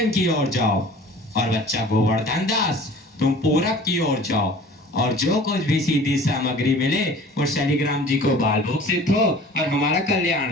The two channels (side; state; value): both; normal; correlation 0.45